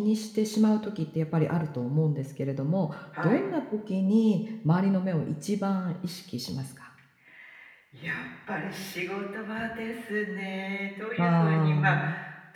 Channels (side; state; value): both; identical; correlation 1.00